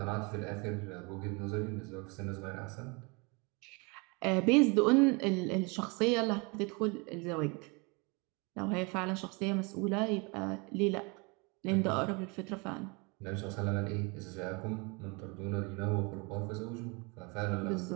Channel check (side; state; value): left; quieter; 29.8 dB